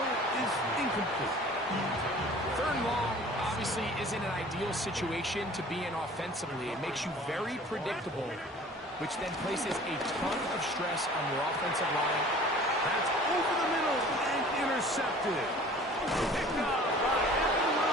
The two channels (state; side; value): normal; both; correlation 0.47